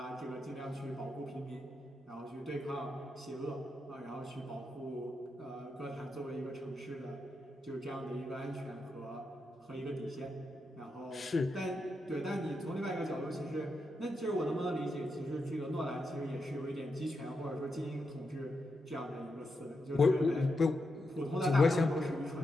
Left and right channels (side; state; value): both; normal; correlation 0.85